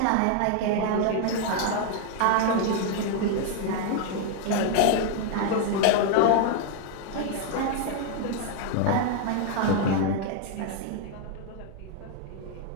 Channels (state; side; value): different; both; correlation 0.00